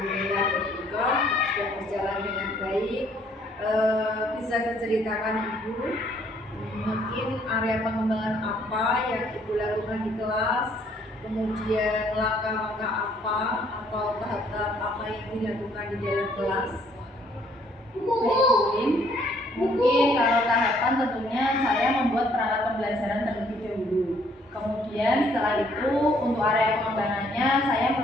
juga sudah berjalan dengan baik. Bisa diceritakan Ibu mungkin area pengembangan apa yang Ibu lakukan di kelas, kemudian langkah-langkah apa atau tahap-tahap apa yang dilakukan di dalam kelas? Baik, mungkin kalau tahapan tentunya saya membuat perangkat pembelajaran terlebih dahulu. Kemudian setelah itu untuk area pengembangannya saya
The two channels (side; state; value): both; normal; correlation 0.64